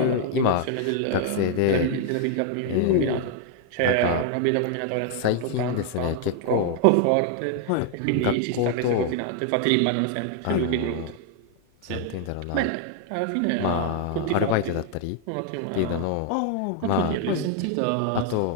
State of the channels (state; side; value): different; both; correlation 0.00